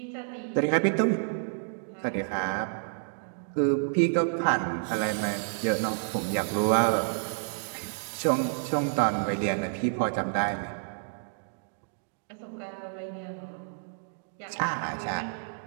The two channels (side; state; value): left; silent; digital silence